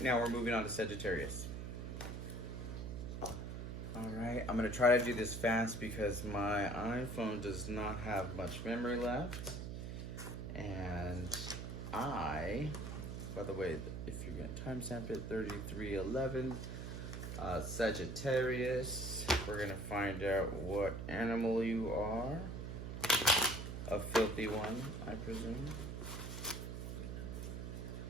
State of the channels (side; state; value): right; noise; hum, 6 dB below the sound